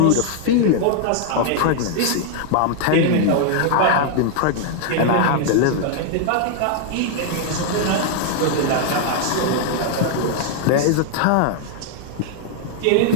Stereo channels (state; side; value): different; both; correlation 0.00